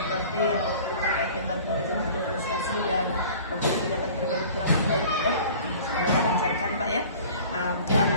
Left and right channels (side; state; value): both; inverted; correlation -0.46